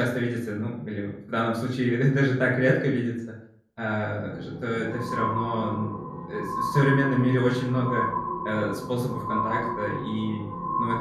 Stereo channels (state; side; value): identical; both; correlation 1.00